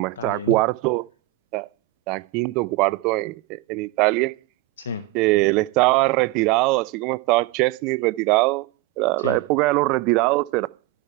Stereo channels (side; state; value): left; quieter; 18.3 dB